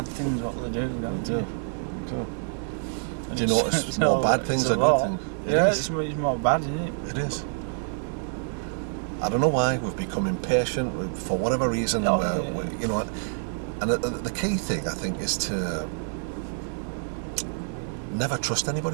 things what they do, don't you? Do you notice more bad things it's a or lot. good things? Yeah, it's more bad, isn't it? It is. I don't know why we've become impatient for whatever reason. You know, and the key thing I think is to never trust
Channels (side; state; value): left; silent; digital silence